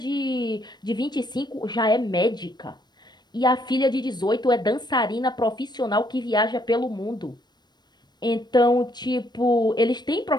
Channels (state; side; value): late; right; 0.21 ms